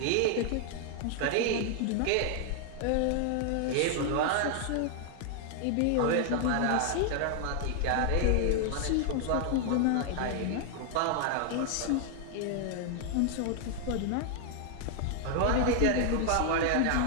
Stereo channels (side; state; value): both; different; correlation 0.00